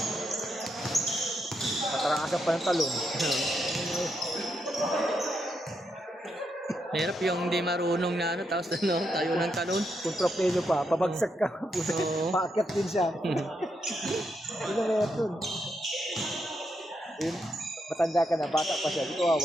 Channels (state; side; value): normal; both; correlation 0.81